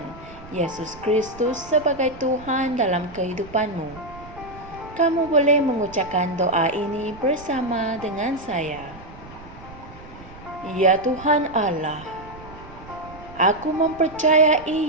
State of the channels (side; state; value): right; noise; rumble, 18 dB below the sound